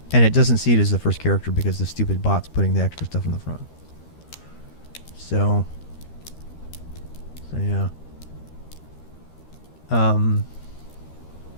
and it doesn't see it as the first character because the stupid bot's putting the extra stuff in the front. So, So yeah. Um.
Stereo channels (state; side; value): late; right; 13 ms